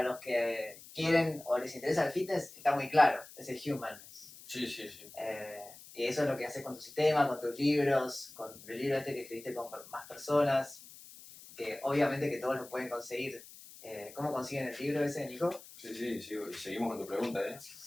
los que quieren o les interesa el fitness está muy claro, es el humanness. Sí. Y eso es lo que haces con tu sistema, con tus libros, con el libro que escribiste con más personas, que obviamente que todos lo pueden conseguir. ¿Cómo consiguen el libro ese, Nico? Sí, y seguimos con tu pregunta, ¿eh?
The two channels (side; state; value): left; noise; hiss, 18 dB below the sound